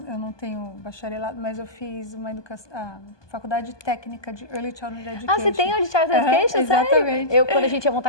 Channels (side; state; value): right; late; 1.2 ms